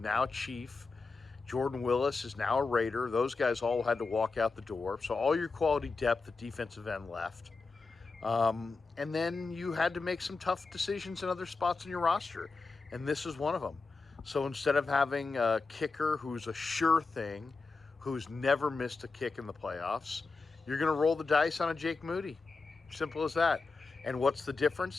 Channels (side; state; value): right; quieter; 4.1 dB